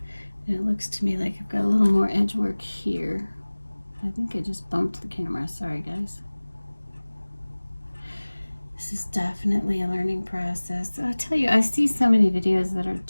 And it looks to me like I've got a little more edge work here. I think I just bumped the camera, sorry guys. This is definitely a learning process. I tell you, I see so many videos that are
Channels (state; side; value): inverted; both; correlation -1.00